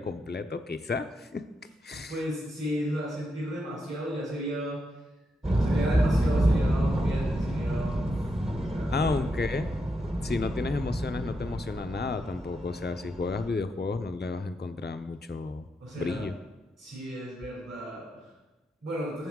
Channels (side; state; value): both; normal; correlation 0.83